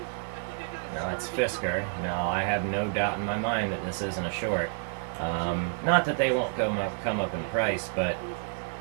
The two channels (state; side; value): silent; left; digital silence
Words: Now that's Fisker. Now I have no doubt in my mind that this isn't a short. Not that they won't come up in price, but